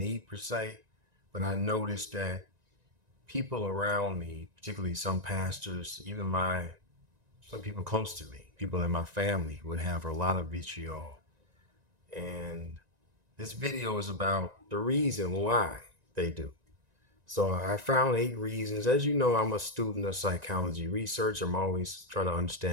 per se. But I noticed that people around me, particularly some pastors, even some people close to me, people in my family, would have a lot of vitriol. And this video is about the reason why they do. So I found 8 reasons. As you know, I'm a student of psychology research. I'm always trying to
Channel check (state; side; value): late; left; 1.9 ms